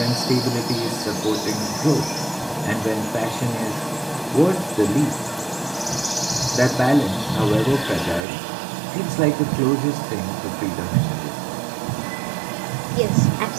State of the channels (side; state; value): left; drops out; at 8.2 s